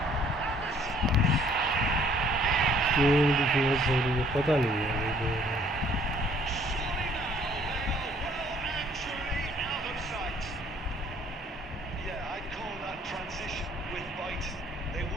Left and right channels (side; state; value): both; normal; correlation 0.60